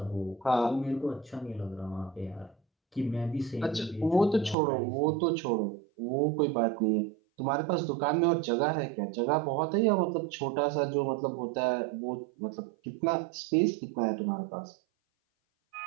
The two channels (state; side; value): drops out; left; at 4.5 s